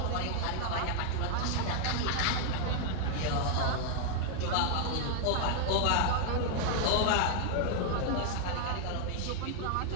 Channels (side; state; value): both; different; correlation 0.00